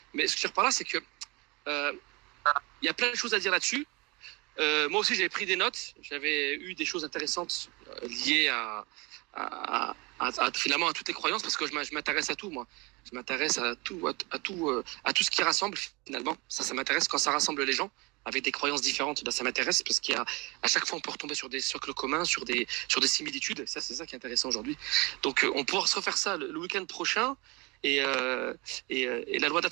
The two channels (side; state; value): left; quieter; 26.3 dB